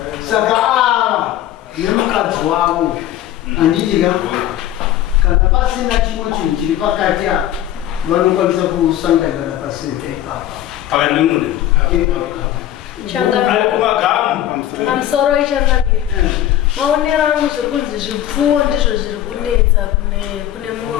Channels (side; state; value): right; quieter; 12.5 dB